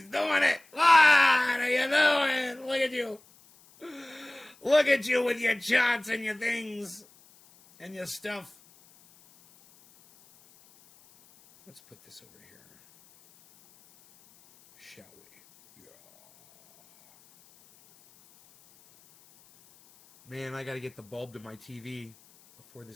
doing it. What are you doing? Look at you. Look at you with your charts and your things and your stuff. Let's put this over here. Shall we? Yeah. Man, I got to get the bulb to my TV before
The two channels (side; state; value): left; noise; hiss, 28 dB below the sound